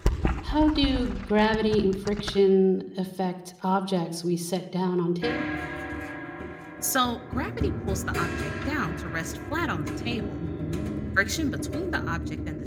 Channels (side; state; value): both; identical; correlation 1.00